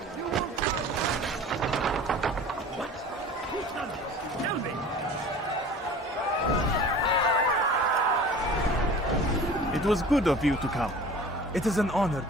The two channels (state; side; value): normal; both; correlation 0.41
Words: You will What? Who's done this? Tell me! It was good of you to come. It is an honor